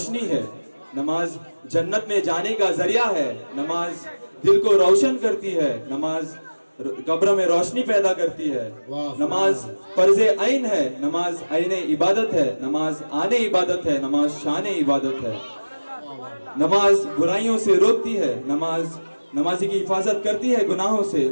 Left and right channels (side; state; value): both; inverted; correlation -1.00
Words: है, नमाज जन्नत में जाने का जरिया है, नमाज दिल को रोशन करती है, नमाज कब्र में रोशनी पैदा करती है, नमाज फर्ज ऐन है, नमाज ऐने इबादत है, नमाज आने इबादत है, नमाज शान इबादत है, नमाज बुराइयों से रोकती है, नमाज नमाजी की हिफाजत करती है गुनाहों से,